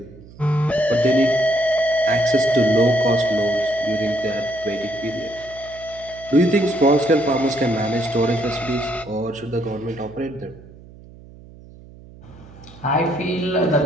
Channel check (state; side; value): noise; right; hum, 21 dB below the sound